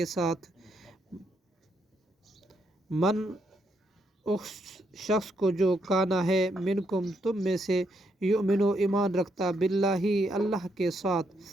ساتھ من اس شخص کو جو کانا ہے منکم تم میں سے یؤمنو ایمان رکھتا باللہ اللہ کے ساتھ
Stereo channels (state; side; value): normal; both; correlation 0.77